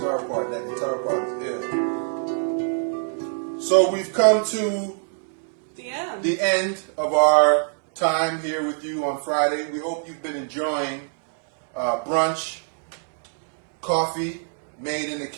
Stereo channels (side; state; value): left; silent; digital silence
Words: part. That guitar part is ill. So we've come to the end of our time here with you on Friday. We hope you've been enjoying brunch, coffee made in the